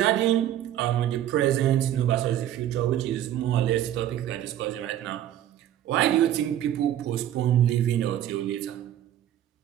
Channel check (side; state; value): left; quieter; 11.7 dB